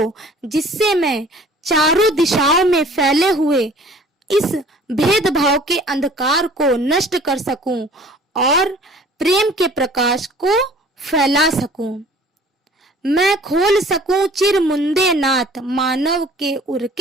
जिससे मैं चारों दिशाओं में फैले हुए इस भेदभाव के अंधकार को नष्ट कर सकूं और प्रेम के प्रकाश को फैला सकूं। मैं खोल सकूं चिर मुंदे नाथ, मानव के उर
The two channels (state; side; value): normal; both; correlation 0.50